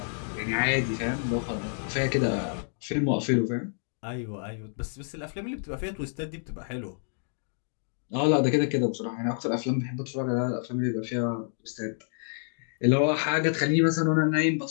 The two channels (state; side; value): silent; right; digital silence